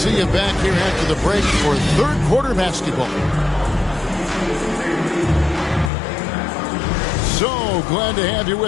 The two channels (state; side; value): drops out; right; at 5.9 s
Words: you back here after the break for third quarter basketball. So glad to have you